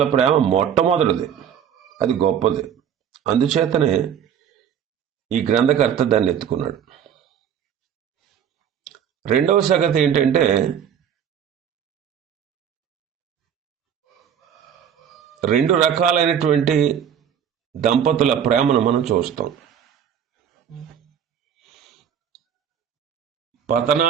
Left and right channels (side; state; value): left; quieter; 8.6 dB